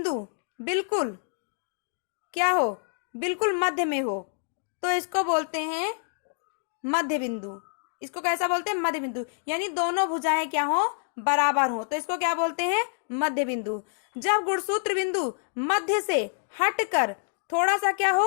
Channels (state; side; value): silent; right; digital silence